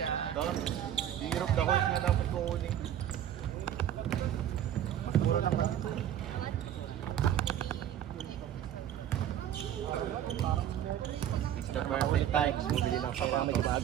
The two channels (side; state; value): left; quieter; 10.7 dB